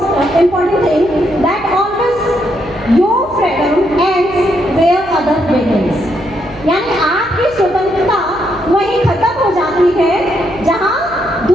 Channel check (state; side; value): noise; right; hum, 20 dB below the sound